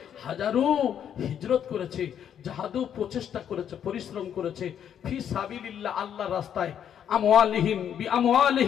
হাজারু হিজরত করেছে, জাহাদু প্রচেষ্টা করেছে, পরিশ্রম করেছে, ফি সাবিলিল্লাহ আল্লাহর রাস্তায়, আমওয়ালিহিম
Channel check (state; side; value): quieter; right; 9.1 dB